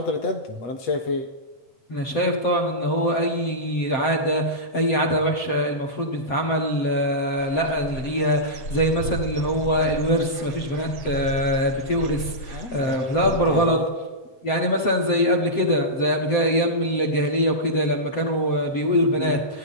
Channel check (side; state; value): right; late; 7.7 ms